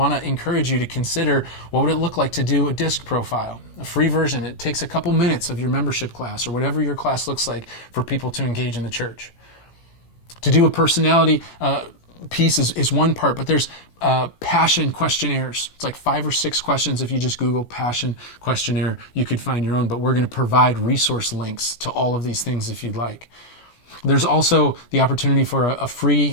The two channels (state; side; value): late; right; 17 ms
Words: to encourage you to consider what would it look like to do a DISC profile, a free version. It takes a couple minutes of your membership class or whatever your class looks like for people to engage in the church. To do a personality piece is one part, but there's passion questionnaires. It's like 5 or 6 questions. If you just Google passion questionnaire, you could find your own, but we're going to provide resource links to all of these things if you'd like. There's also the opportunity for a